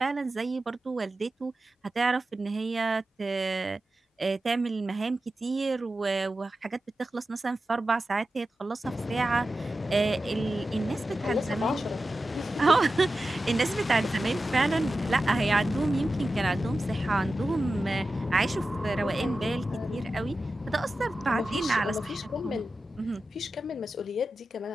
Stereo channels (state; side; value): normal; both; correlation 0.93